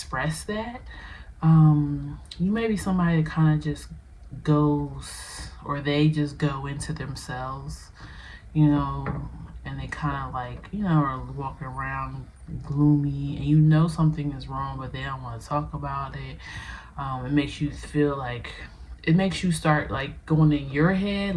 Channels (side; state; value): both; identical; correlation 1.00